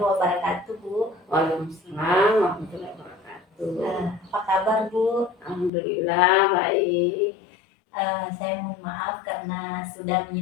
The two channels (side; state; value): right; drops out; at 5.7 s